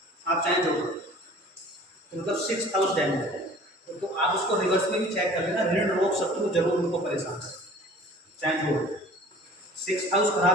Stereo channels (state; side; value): normal; both; correlation 0.47